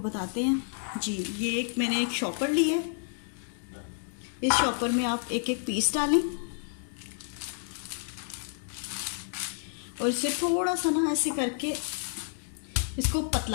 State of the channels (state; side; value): silent; right; digital silence